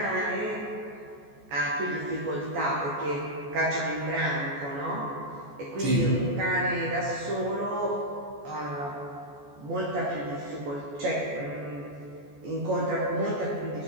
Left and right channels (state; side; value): late; left; 14 ms